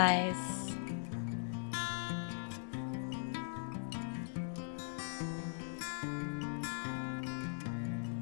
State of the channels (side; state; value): right; silent; digital silence